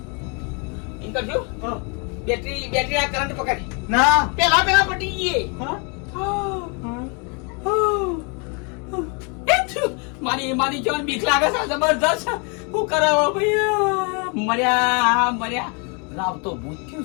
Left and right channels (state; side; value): quieter; right; 34.7 dB